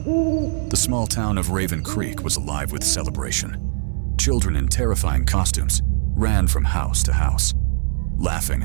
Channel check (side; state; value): left; silent; digital silence